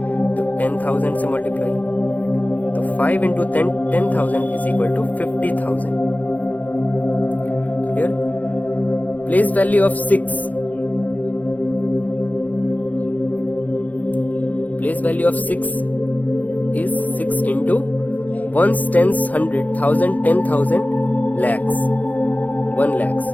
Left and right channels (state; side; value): late; right; 0.079 ms